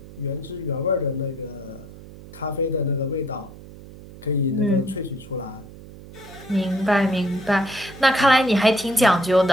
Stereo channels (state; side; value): noise; right; hum, 17 dB below the sound